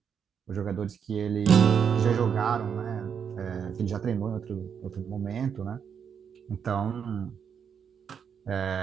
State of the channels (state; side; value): quieter; left; 7.3 dB